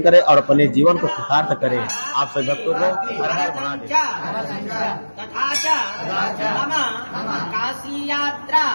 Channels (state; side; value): inverted; both; correlation -1.00